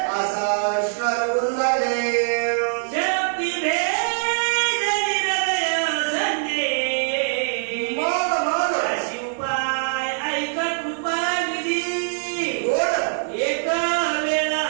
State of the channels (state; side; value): silent; left; digital silence